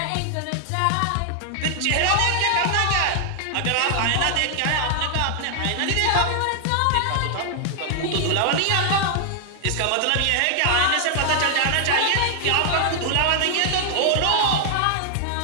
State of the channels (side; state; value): both; different; correlation 0.00